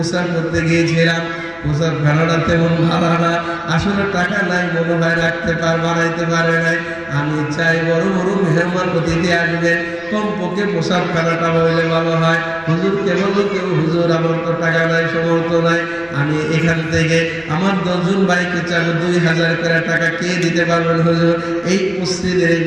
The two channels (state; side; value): noise; left; rumble, 28 dB below the sound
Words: করতে গিয়েছিলাম, প্রচার ভাড়াটা তেমন ভাড়া না, আসলে টাকা নাই, মনে হয় রাখতে বানাইতে পারে নাই। আমি চাই বড় বড় মেহমান অতিথি আসবে, কমপক্ষে প্রসাদ খানাটা হইলে ভালো হয়। হুজুরকে বলো কেউ, হুজুর আমার তো টাকা নাই, সমর্থ নাই, আমি এখান থেকে আমার 10 জন ভাইকে চাইলে 2000 করে টাকা কে দিতে পারবেন হুজুর? এই মসজিদের এই